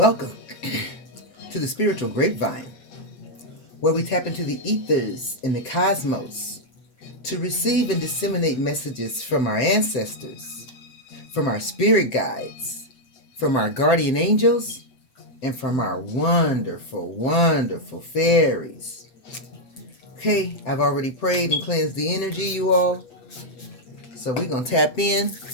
to the Spiritual Grapevine, where we tap into the ethers in the cosmos to receive and disseminate messages from our ancestors, from our spirit guides, from our guardian angels, and from our wonderful, wonderful fairies. Okay, I've already prayed and cleansed the energy, you all. So we're going to tap in,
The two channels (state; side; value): late; right; 7.7 ms